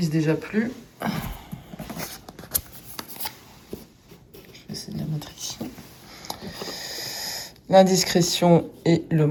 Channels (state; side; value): identical; both; correlation 1.00